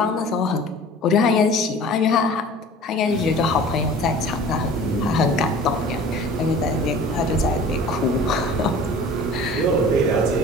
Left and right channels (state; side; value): normal; both; correlation 0.43